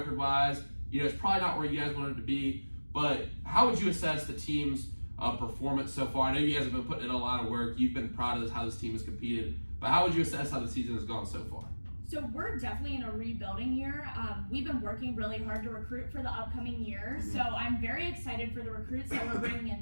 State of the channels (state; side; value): inverted; both; correlation -1.00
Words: you know, it's probably not where you guys wanted to be, but how would you assess the team's performance so far? I know you guys have been putting in a lot of work. You've been proud of how this team has competed, but how would you assess how the season has gone so far? So we're definitely in a rebuilding year. We've been working really hard to recruit for the upcoming year, so I'm very excited for the recruits that we're bringing